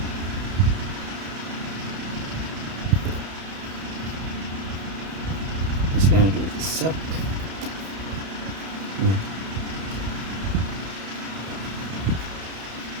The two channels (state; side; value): late; left; 31 ms